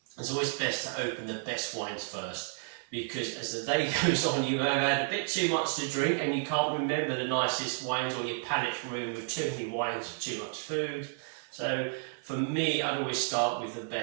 it's always best to open the best wines first, because as the day goes on, you have had a bit too much to drink and you can't remember the nicest wines, or your palate's ruined with too many wines or too much food. So for me, I'd always start with the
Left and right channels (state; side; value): silent; left; 57 dB below the other